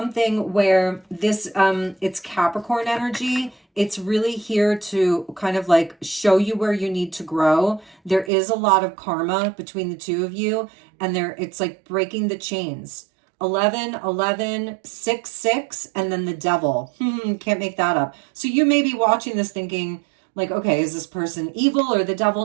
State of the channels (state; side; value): drops out; left; at 8.3 s